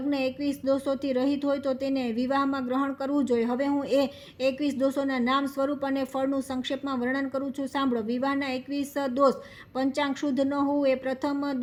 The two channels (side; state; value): both; identical; correlation 1.00